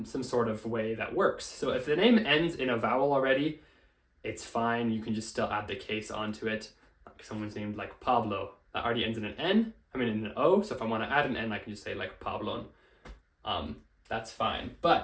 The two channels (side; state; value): both; identical; correlation 1.00